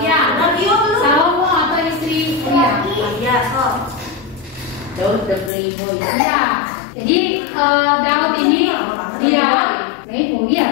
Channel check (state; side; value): drops out; right; at 5.5 s